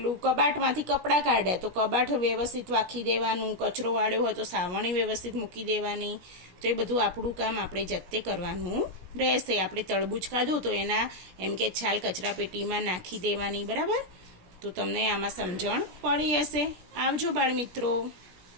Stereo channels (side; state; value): left; late; 17 ms